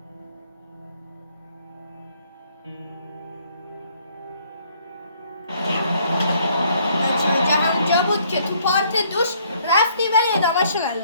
بود که تو پارت دوش رفتی ولی ادامهش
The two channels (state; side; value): inverted; both; correlation -0.65